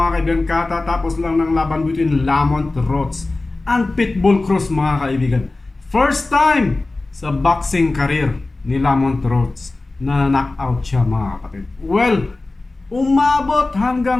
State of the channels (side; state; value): right; quieter; 3.2 dB